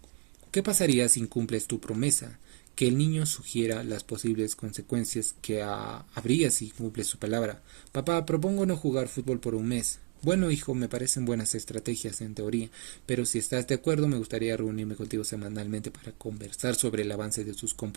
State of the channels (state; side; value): quieter; left; 30.8 dB